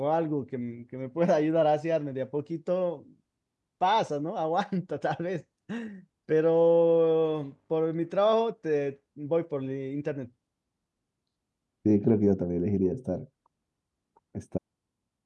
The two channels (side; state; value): both; identical; correlation 1.00